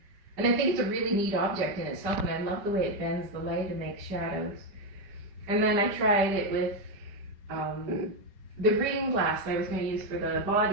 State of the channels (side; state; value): left; late; 5.2 ms